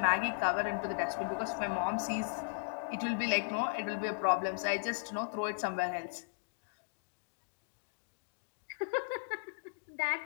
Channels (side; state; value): right; silent; digital silence